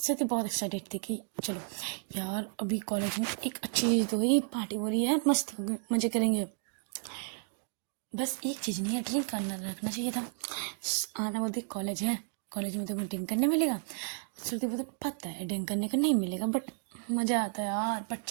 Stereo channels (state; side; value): silent; left; digital silence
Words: बहुत एक्साइटेड थी कि चलो यार अभी कॉलेज में एक अच्छी चीज़ तो हुई, पार्टी हो रही है, मस्त मजे करेंगे। बस एक चीज़ नहीं है, ड्रिंक करना रखना चाहिए था। आना बोलती कॉलेज है, कॉलेज में तो ड्रिंक करने मिलेगा। श्रुति बोलते पता है ड्रिंक करने का नहीं मिलेगा, बट मज़ा आता है यार, बट